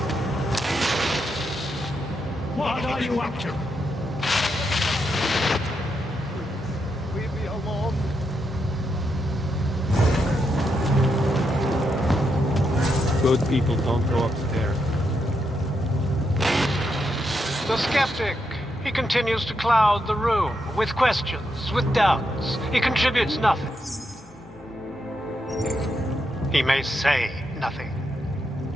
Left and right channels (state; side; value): normal; both; correlation 0.82